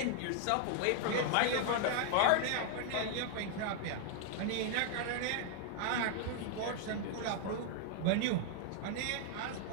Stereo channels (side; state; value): both; different; correlation 0.00